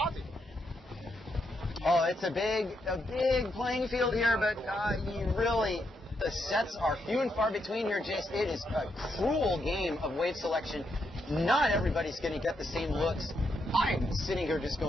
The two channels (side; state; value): both; normal; correlation 0.80